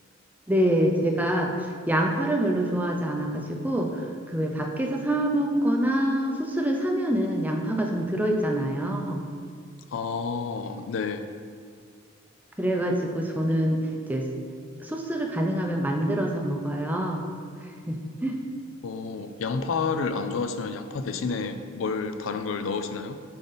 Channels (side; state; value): both; normal; correlation 0.63